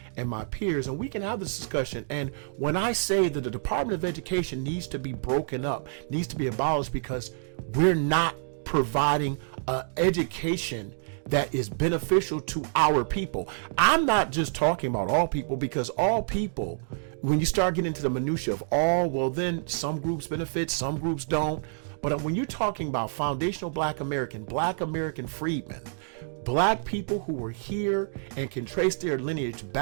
and my peers, and we can have this discussion. And when I say that the Department of Education needs to be broken up, needs to be abolished because we're not providing education that is beneficial to our people. I'm not just talking about all people, because all people, when you start getting into the minutia of all, well, then some groups benefit, some groups don't. But when you're talking about foundational Black American freedmen, Black people who were here and can trace their lineage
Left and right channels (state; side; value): silent; left; digital silence